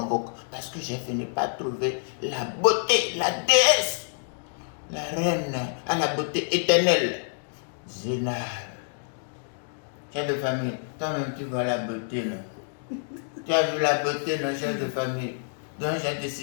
parce que j'ai fini par trouver la beauté, la déesse, la reine à la beauté éternelle, Zénab. Chef de famille, toi-même tu vois la beauté, non? Tu as vu la beauté, non, chef de famille? Donc j'ai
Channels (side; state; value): right; silent; digital silence